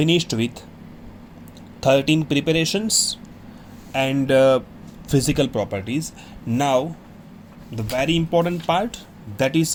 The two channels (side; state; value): both; identical; correlation 1.00